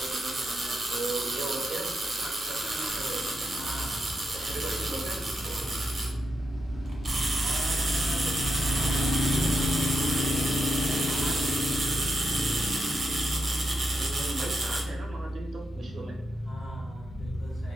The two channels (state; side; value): normal; both; correlation 0.84